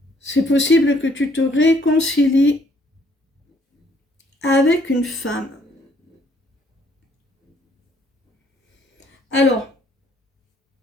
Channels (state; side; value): normal; both; correlation 0.65